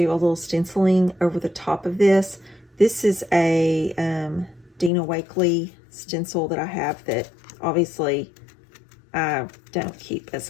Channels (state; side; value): drops out; right; at 4.9 s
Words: a little stenciling over the top of this. This is a Dina Wakley stencil that I have that obviously I don't keep as